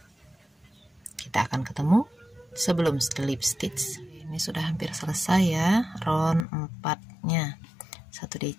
Kita akan ketemu sebelum slip stitch. Ini sudah hampir selesai ya, round 4-nya. 1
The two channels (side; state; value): right; drops out; at 6.5 s